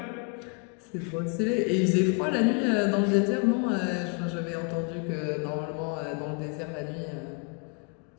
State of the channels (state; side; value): quieter; right; 35.3 dB